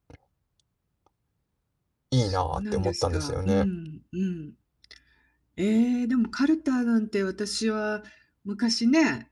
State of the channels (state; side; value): identical; both; correlation 1.00